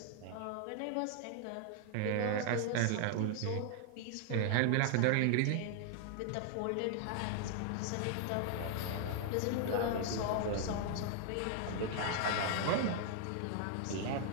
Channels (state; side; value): different; both; correlation 0.00